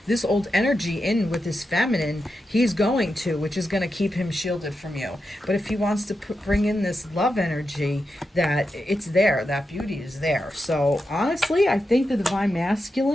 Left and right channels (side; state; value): both; normal; correlation 0.88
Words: this old energy in with his feminine, he's going to, which is going to keep him shielded from you. But if he wants to bring in this love energy, that it's there, that beauty is there. So honestly, I think the divine